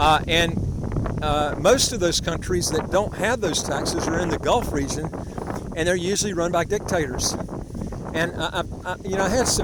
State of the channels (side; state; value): both; identical; correlation 1.00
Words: And most of those countries that don't have those taxes are in the Gulf region, and they're usually run by dictators. And I had